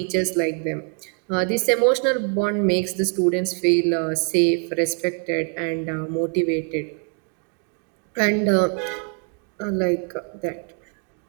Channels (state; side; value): quieter; left; 39.1 dB